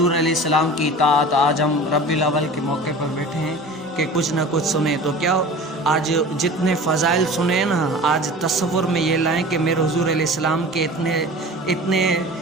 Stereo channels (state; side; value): normal; both; correlation 0.39